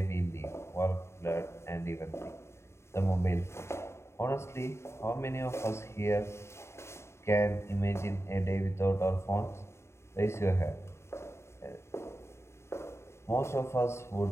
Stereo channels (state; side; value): late; right; 0.13 ms